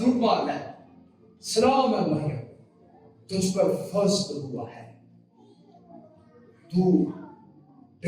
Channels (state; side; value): identical; both; correlation 1.00